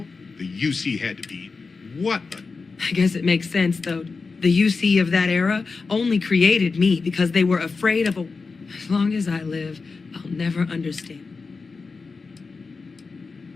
The UC had to be. What a... I guess it makes sense, though. The UC of that era only created me because they were afraid of a... As long as I live, I'll never understand.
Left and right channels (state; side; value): quieter; right; 4.4 dB